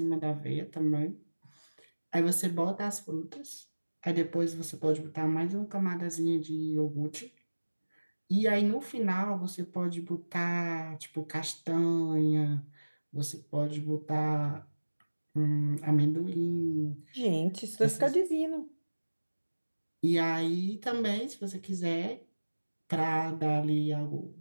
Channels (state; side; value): inverted; both; correlation -1.00